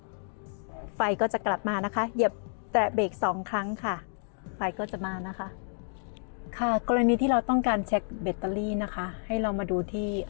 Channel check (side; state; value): right; silent; 58 dB below the other